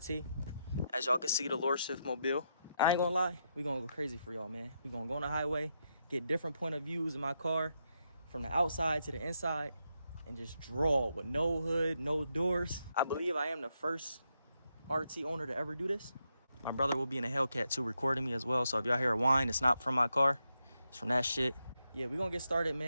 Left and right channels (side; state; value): both; inverted; correlation -0.82